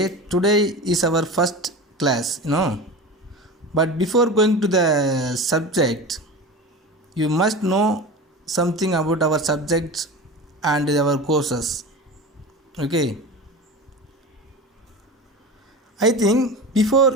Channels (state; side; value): normal; both; correlation 0.30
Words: today is our first class, But before going to the subject, you must know something about our subjects and our courses. Okay. I think